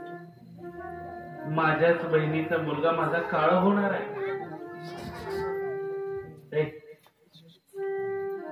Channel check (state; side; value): identical; both; correlation 1.00